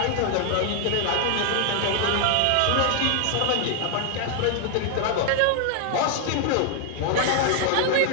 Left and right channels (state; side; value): different; both; correlation 0.00